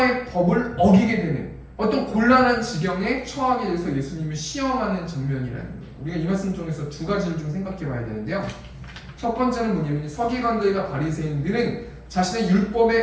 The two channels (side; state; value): both; identical; correlation 1.00